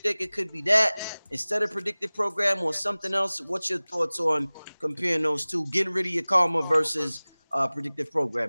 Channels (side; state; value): both; inverted; correlation -1.00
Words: it could be that instead of predictive program or something else? What's your thoughts on comparing those two, getting rid of your karma versus predictive